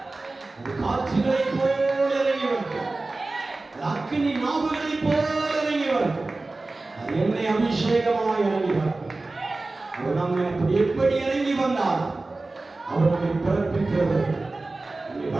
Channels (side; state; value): left; quieter; 3.2 dB